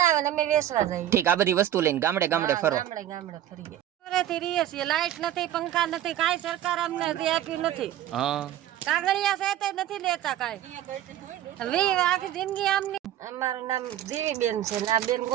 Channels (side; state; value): left; quieter; 12.1 dB